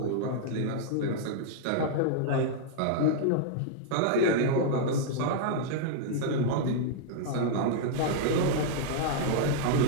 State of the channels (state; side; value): different; both; correlation -0.01